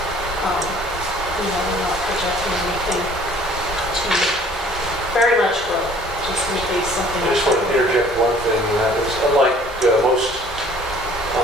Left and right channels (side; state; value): both; normal; correlation 0.54